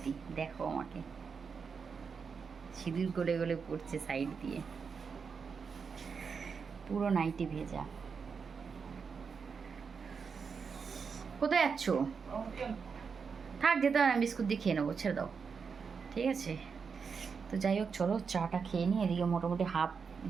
দেখো আমাকে, সিঁদুর গলে গলে পড়ছে সাইড দিয়ে, পুরো নাইটি ভেজা। কোথায় যাচ্ছ? থাক, যেতে হবে না, বিস্কুট দিয়ে খেয়ে নেবো, ছেড়ে দাও, ঠিক আছে। তো যাই হোক, চলো চাটা খেয়ে নিই। এদিকে মোটামুটি হাফ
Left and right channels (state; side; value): quieter; left; 5.7 dB